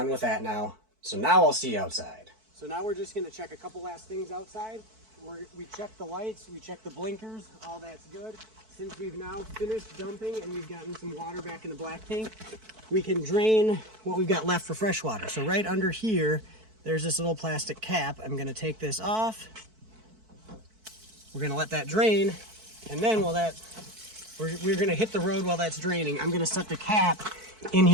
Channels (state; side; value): late; left; 4.6 ms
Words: with that now. So now I'll see you outside. So now we're just gonna check a couple last things outside. We checked the lights, we checked the blinkers, all that's good. Since we've now finished dumping and we've gotten some water back in the black tank, we can drain what we've got left for fresh water. So right under here, there's this little plastic cap. I'm gonna take this off. We're gonna let that drain, and then we're gonna hit the road while that's draining. I'm gonna set the cap in